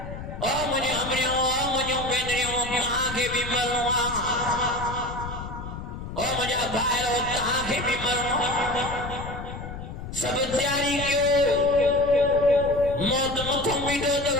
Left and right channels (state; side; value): noise; left; rumble, 9 dB below the sound